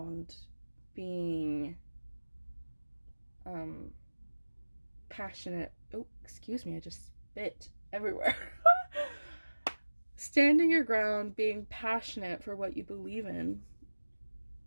being passionate. Oh, excuse me, I just spit everywhere. Standing your ground, being passionate for what you believe in.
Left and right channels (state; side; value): inverted; both; correlation -1.00